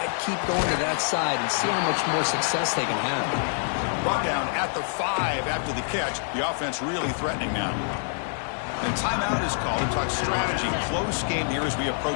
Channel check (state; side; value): silent; right; 58 dB below the other